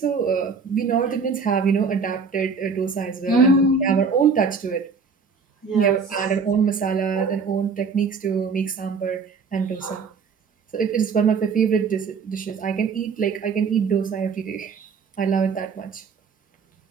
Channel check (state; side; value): quieter; left; 5.2 dB